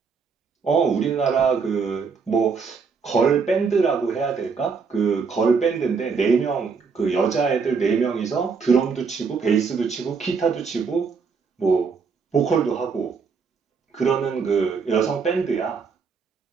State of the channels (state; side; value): quieter; left; 5.4 dB